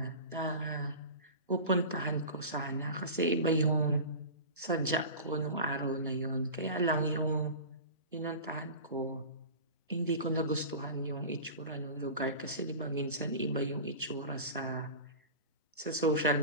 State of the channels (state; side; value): inverted; both; correlation -0.33